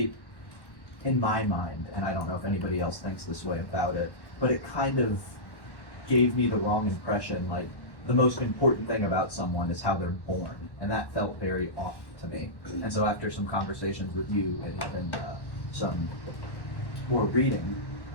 in my mind, and I don't know if anybody else thinks this way about it, but it kind of gave me the wrong impression. Like, the most important thing about someone is how they're born, and that felt very off to me. And so after some conversations with you and even some more reading,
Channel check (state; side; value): late; right; 1.1 ms